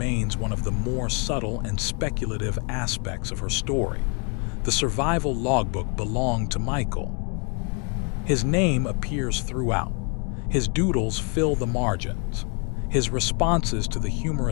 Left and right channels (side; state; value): right; quieter; 36.7 dB